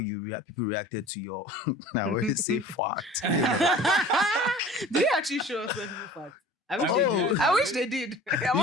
people reacted to your, I always say fart. Did they actually show us when people fart? I wish they did. I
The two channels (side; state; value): both; normal; correlation 0.43